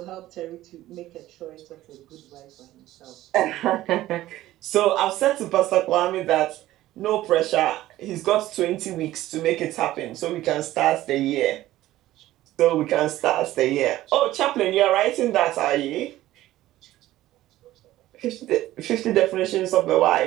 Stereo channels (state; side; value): quieter; left; 15.2 dB